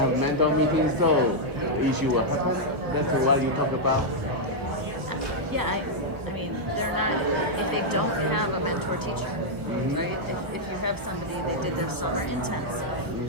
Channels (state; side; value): late; left; 1.2 ms